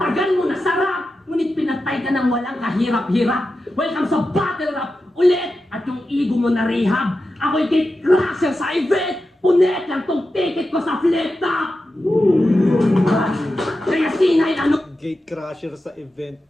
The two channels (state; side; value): normal; both; correlation 0.91